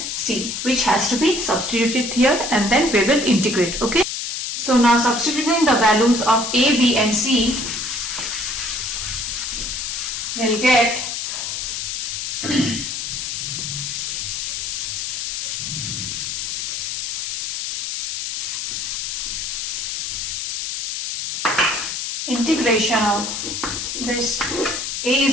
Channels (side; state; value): left; noise; hiss, 3 dB below the sound